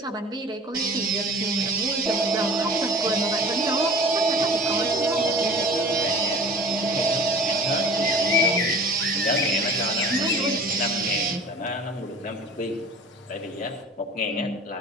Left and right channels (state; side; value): normal; both; correlation 0.42